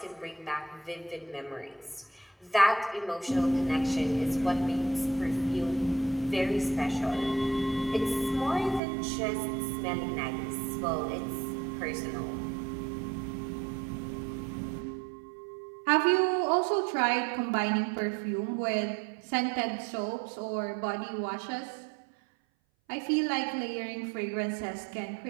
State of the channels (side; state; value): left; drops out; at 8.8 s